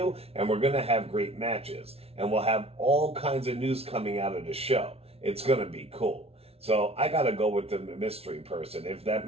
and we're going to have great matches. And we'll have all kinds of news coming out of the show. It's going to be cool." So I got to go with the mystery person. If that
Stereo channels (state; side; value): late; left; 0.29 ms